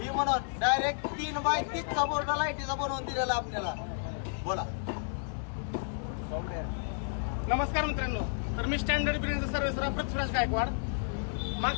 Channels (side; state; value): right; silent; digital silence